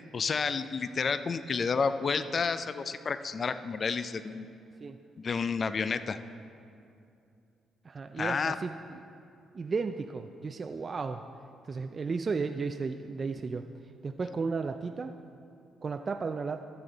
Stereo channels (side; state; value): both; normal; correlation 0.84